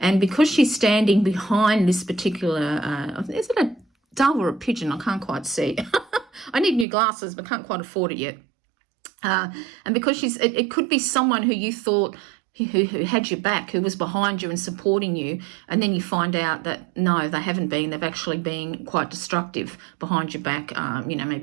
because she's standing behind this particular, is it a dove or a pigeon? I can't quite see. I need new glasses, but can't quite afford it yet. And because it could be someone who you thought who had your back, who was behind you and supporting you, and then you find out that no, they haven't been. They've actually been quite destructive behind your back,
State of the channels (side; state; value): left; drops out; at 6.9 s